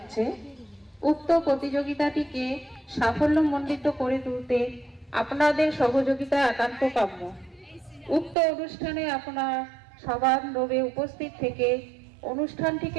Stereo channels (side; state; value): left; drops out; at 8.3 s